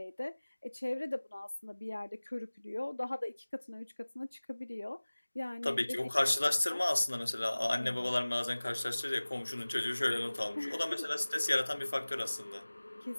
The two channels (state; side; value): inverted; both; correlation -1.00